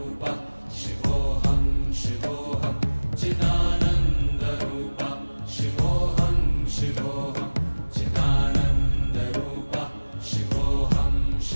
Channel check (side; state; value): both; inverted; correlation -1.00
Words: शिवोऽहं शिवोऽहं चिदानन्दरूप शिवोऽहं शिवोऽहं चिदानन्दरूप शिवोऽहं